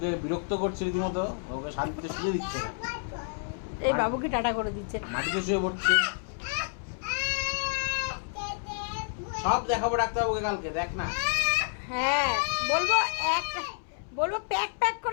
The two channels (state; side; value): silent; right; 58 dB below the other